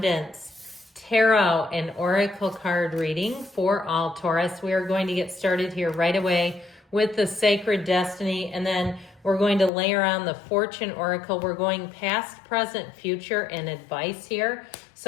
tarot and oracle card reading for all Taurus. We are going to get started here right away with the Sacred Destiny, and then we're going to layer on the Fortune Oracle. We're going past, present, future, and advice here.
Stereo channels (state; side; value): drops out; right; at 9.7 s